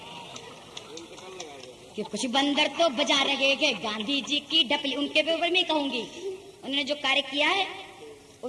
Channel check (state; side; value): identical; both; correlation 1.00